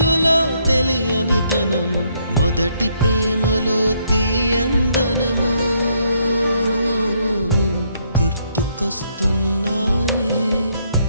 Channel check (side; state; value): both; inverted; correlation -0.72